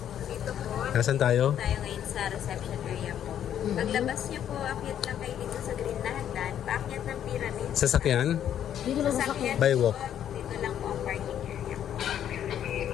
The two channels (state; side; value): quieter; right; 10.1 dB